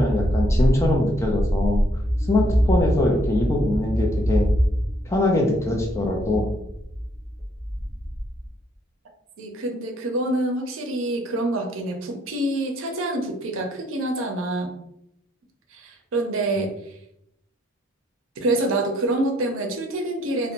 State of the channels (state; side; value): normal; both; correlation 0.69